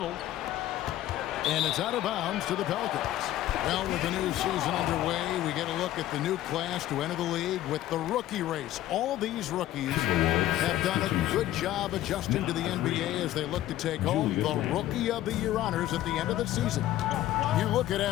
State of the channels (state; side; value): quieter; right; 13.9 dB